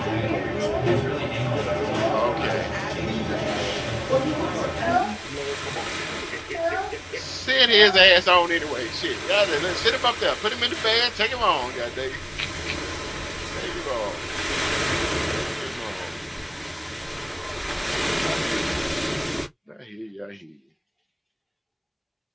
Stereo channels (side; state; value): both; identical; correlation 1.00